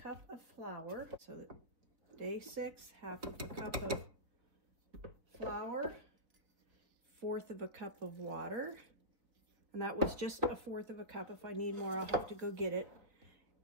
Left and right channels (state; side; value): late; left; 3.9 ms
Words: of flour. So day 6, 1/2 cup of flour, 1/4 cup of water. And that was just 1/4 cup. If I need more, I'll have to go get it.